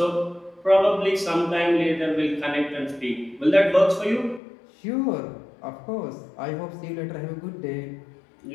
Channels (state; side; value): drops out; right; at 4.4 s